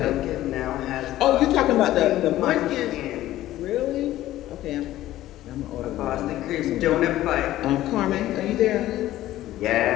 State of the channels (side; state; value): right; quieter; 14.6 dB